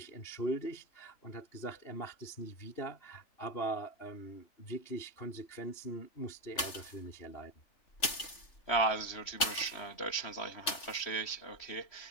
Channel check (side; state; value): right; late; 3.4 ms